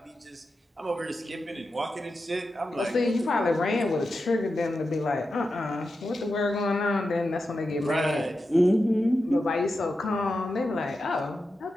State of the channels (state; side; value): normal; both; correlation 0.90